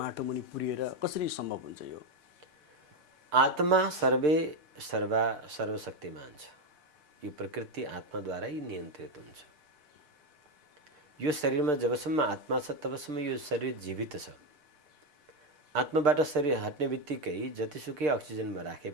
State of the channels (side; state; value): left; late; 6.7 ms